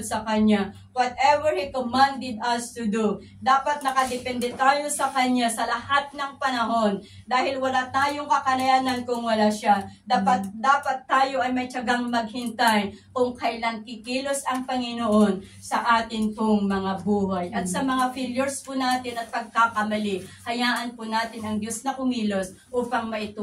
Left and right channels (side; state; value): both; identical; correlation 1.00